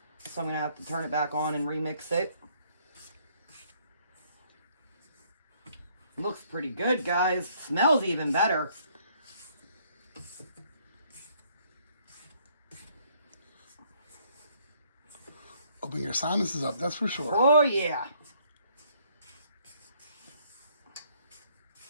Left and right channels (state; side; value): inverted; both; correlation -0.65